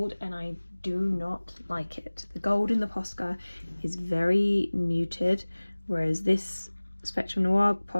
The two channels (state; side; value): inverted; both; correlation -1.00